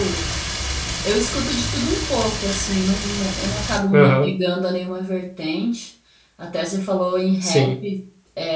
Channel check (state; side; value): identical; both; correlation 1.00